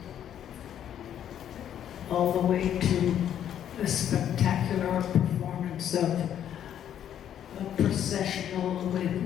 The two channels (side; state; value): right; quieter; 10.1 dB